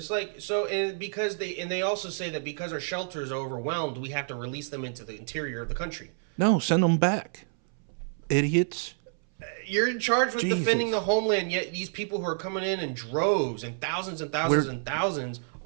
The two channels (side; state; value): left; silent; 59 dB below the other